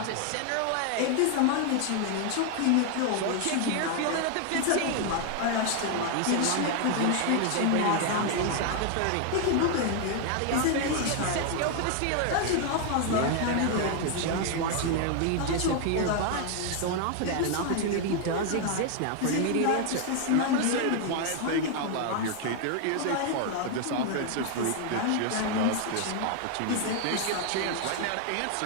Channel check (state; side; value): different; both; correlation 0.00